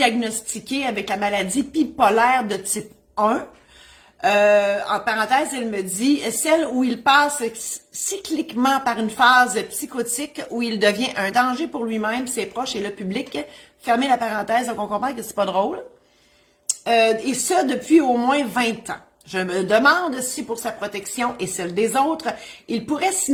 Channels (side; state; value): both; identical; correlation 1.00